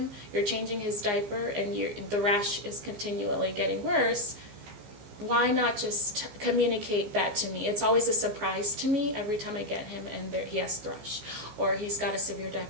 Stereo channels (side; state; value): left; late; 15 ms